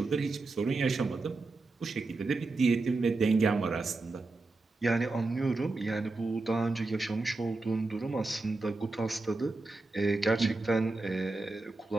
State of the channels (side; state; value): left; quieter; 3.4 dB